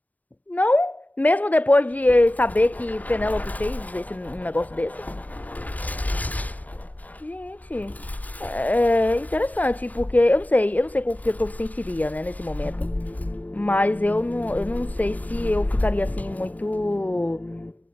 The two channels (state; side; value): late; right; 0.075 ms